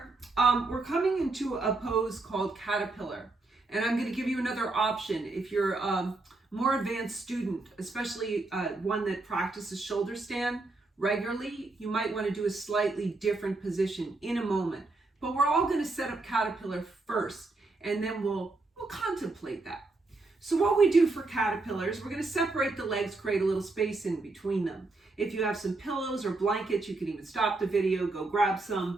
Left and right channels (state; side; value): quieter; left; 3.3 dB